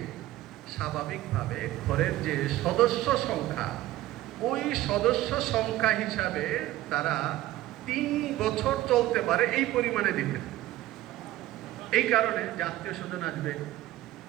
স্বাভাবিকভাবে ঘরের যে সদস্য সংখ্যা, ওই সদস্য সংখ্যা হিসাবে তারা 3 বছর চলতে পারে এই পরিমাণে দিতেন। এই কারণে যে আত্মীয় স্বজন আসবে,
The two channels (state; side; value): quieter; left; 15.5 dB